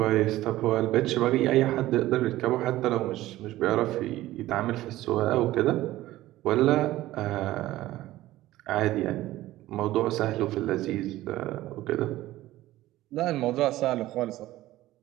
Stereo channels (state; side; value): quieter; left; 15.9 dB